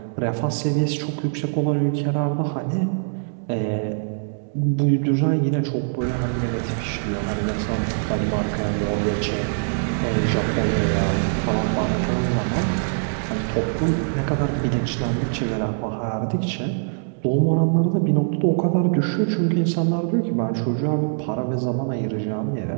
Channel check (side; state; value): left; silent; digital silence